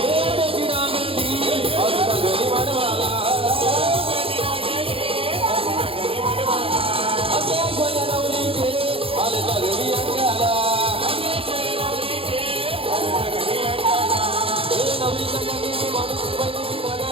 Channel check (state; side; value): late; left; 0.27 ms